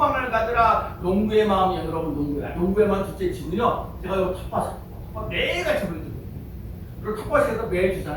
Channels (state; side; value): identical; both; correlation 1.00